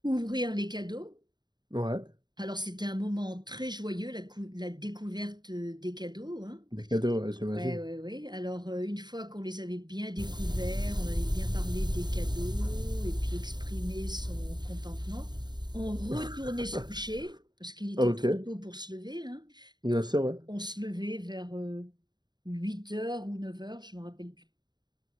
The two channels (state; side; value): late; left; 0.21 ms